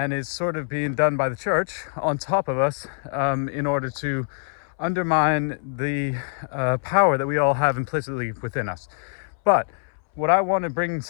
is sort of being done by the church on top of us, in order to undermine the power that we all have implicitly within us. But what I want to bring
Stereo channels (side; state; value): right; silent; 62 dB below the other